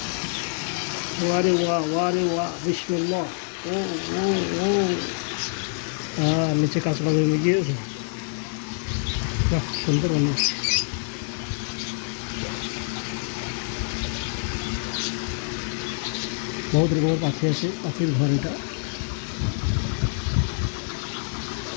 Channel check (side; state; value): right; silent; 61 dB below the other